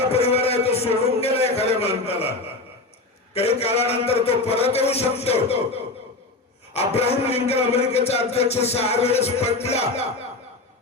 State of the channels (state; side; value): quieter; right; 3.2 dB